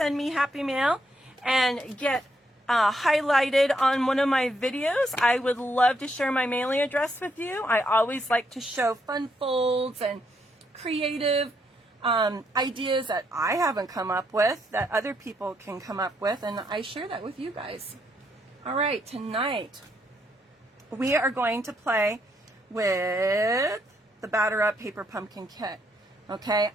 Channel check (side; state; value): both; normal; correlation 0.76